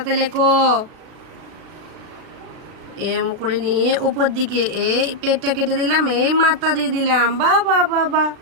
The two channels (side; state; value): left; late; 36 ms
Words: লেখো। এম করে নিয়ে উপর দিকে এই পেটটা কেটে দিলাম, এই মাথা দিয়ে দিলাম, বাহ বাহ বাহ বাহ।